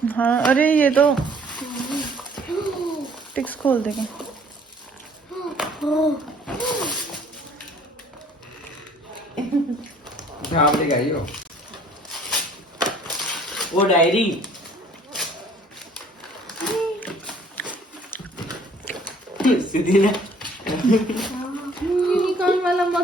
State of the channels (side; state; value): both; normal; correlation 0.57